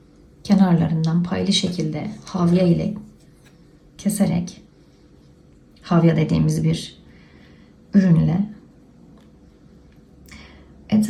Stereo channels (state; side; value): identical; both; correlation 1.00